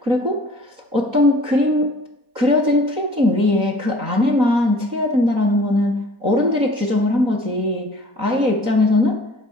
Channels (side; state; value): left; late; 3.9 ms